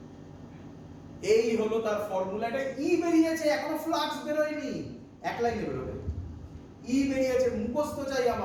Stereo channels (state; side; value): identical; both; correlation 1.00